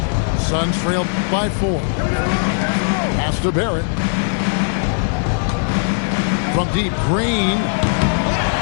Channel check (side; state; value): right; silent; 67 dB below the other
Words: Suns trail by 4. Pass to Barrett. From deep, Green.